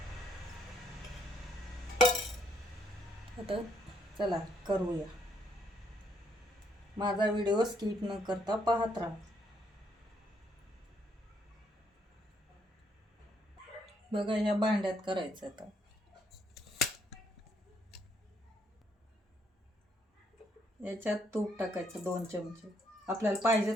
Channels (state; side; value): normal; both; correlation 0.71